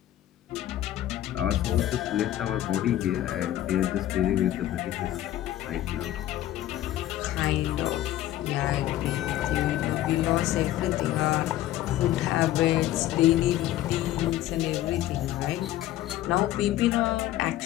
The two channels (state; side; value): quieter; right; 13.7 dB